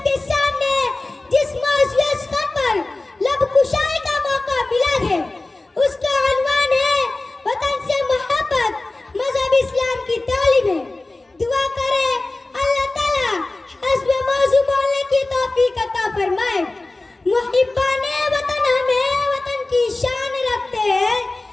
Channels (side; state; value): right; quieter; 3.0 dB